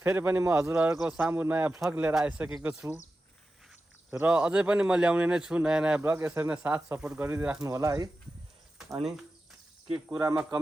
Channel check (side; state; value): both; normal; correlation 0.93